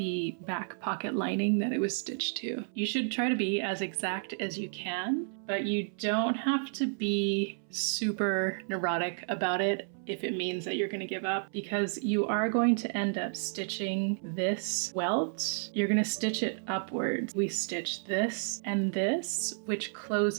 back pocket lining that it was stitched to. You should try to be as exact as you can, but you don't have to be super neurotic about it if it means that you're going to give up, because you are going to end up stitching this welt. You're going to stitch it upwards. We stitch this and this, which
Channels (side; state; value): left; silent; 57 dB below the other